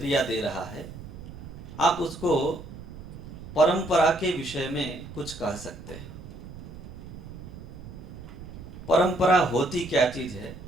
दे रहा है। आप उसको परंपरा के विषय में कुछ कह सकते हैं। परंपरा होती क्या चीज है,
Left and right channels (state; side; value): noise; right; rumble, 13 dB below the sound